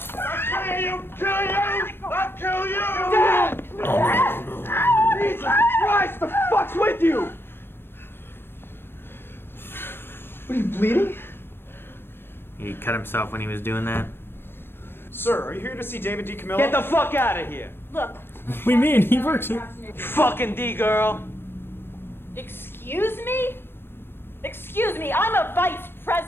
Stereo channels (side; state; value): right; late; 0.10 ms